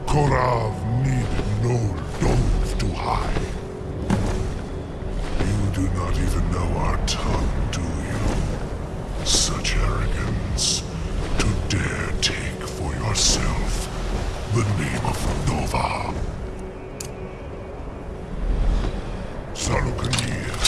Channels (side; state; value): both; identical; correlation 1.00